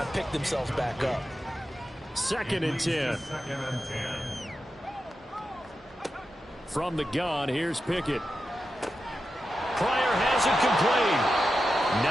and pick themselves back up. 2nd and 10. From the gun, here's Pickett. Pryor has it complete.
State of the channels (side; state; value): both; normal; correlation 0.90